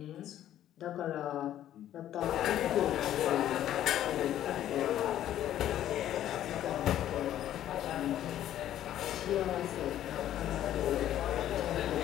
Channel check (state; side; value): quieter; right; 11.9 dB